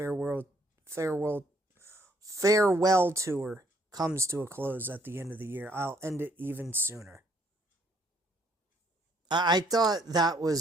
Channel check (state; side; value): normal; both; correlation 0.66